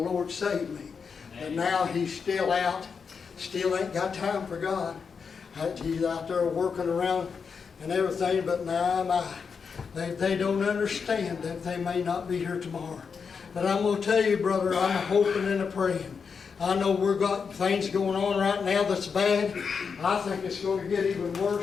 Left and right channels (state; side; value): quieter; right; 5.8 dB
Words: saved me. And now he's still out, still ain't got time for God. He's out there working around and everything, but my. They don't understand that they may not be here tomorrow. But I'm going to tell you, brother, I'm hoping and praying. I know we've got things going on right now that's bad. I think it's going to get even